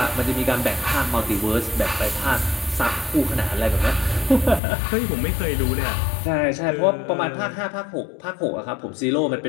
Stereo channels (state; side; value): drops out; right; at 4.6 s